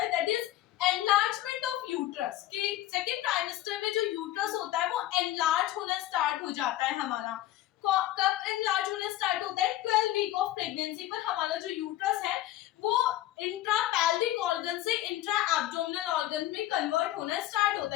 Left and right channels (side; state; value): right; quieter; 14.5 dB